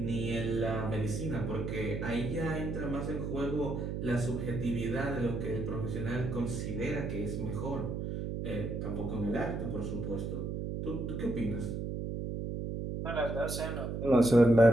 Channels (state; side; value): noise; right; hum, 3 dB below the sound